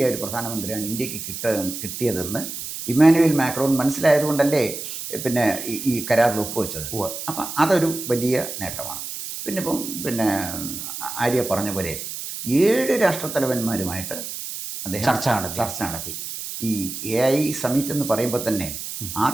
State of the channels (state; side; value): noise; right; hiss, 7 dB below the sound